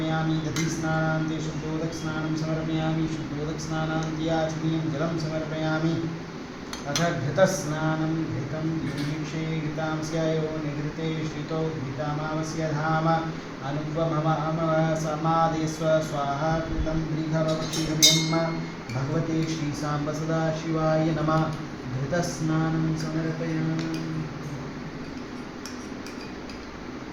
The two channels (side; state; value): both; identical; correlation 1.00